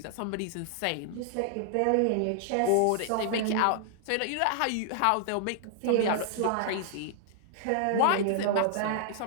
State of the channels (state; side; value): different; both; correlation -0.01